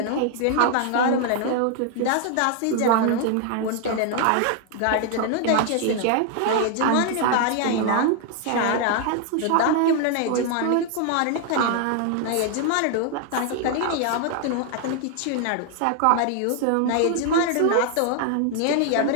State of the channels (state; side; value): different; both; correlation 0.00